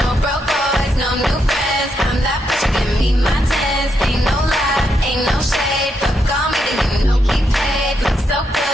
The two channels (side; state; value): both; normal; correlation 0.80